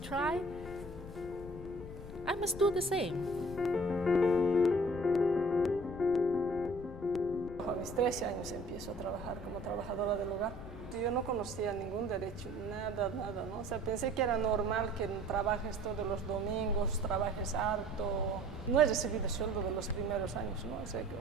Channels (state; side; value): noise; left; rumble, 13 dB below the sound